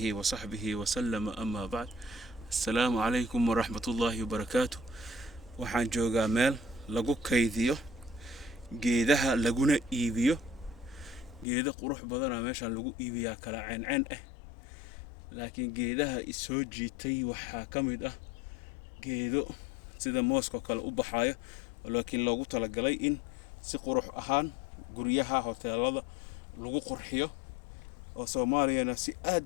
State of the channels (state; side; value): drops out; right; at 11.5 s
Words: وصحبه وسلم. أما بعد، السلام عليكم ورحمة الله وبركاته. waxaan joogaa meel lagu kaydiyo geedaha laguna iibiyo. geedo qurux badan meesha lagu iibiyaa kala ceen laakiin geedaha isoo jiitay waxaa kamid ah geedo sida mooska kale u baxayo, laakiin loogu talagalay in si qurux ahaan guryaha hoteelada lagu qurxiyo oo Soomaaliyana si